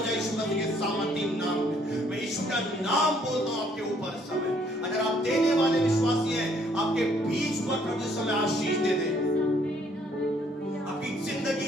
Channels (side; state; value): both; normal; correlation 0.65